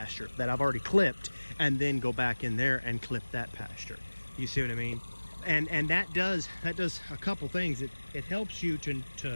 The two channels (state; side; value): inverted; both; correlation -1.00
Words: that I've already clipped and then go back in there and clip that pasture. You see what I mean? And that does a couple things. It helps you